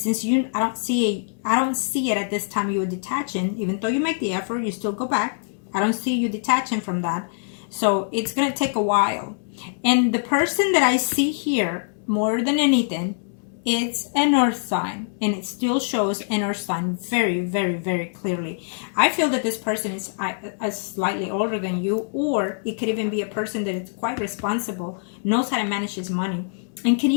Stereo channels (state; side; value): silent; right; digital silence